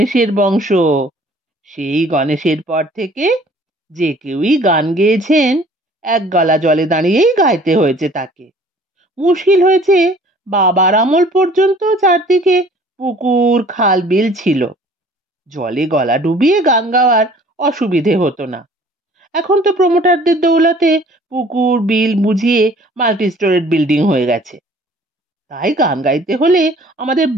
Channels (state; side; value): normal; both; correlation 0.52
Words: বংশ। সেই গণেশের পর থেকে যে কেউই গান গেয়েছেন এক গলা জলে দাঁড়িয়েই গাইতে হয়েছে তাকে। মুশকিল হয়েছে, বাবার আমল পর্যন্ত চারদিকে পুকুর খাল বিল ছিল, জলে গলা ডুবিয়ে গান গাওয়ার অসুবিধে হতো না। এখন তো প্রমোটারদের দৌলতে পুকুর বিল বুঝিয়ে মাল্টি স্টোরেড বিল্ডিং হয়ে গেছে, তাই গান গাইতে হলে আমাদের